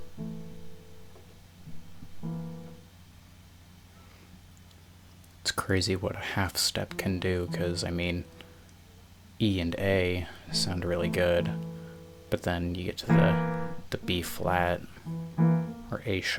It's crazy what a half step can do, because I mean, E and A sound really good, but then you get to the B flat, or A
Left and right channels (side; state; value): both; identical; correlation 1.00